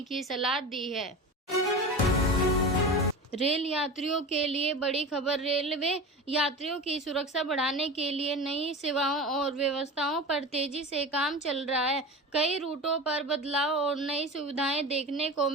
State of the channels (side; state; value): both; normal; correlation 0.30